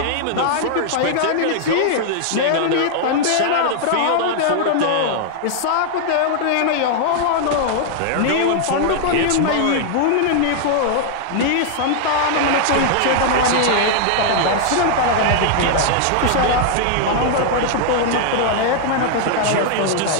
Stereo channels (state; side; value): different; both; correlation -0.01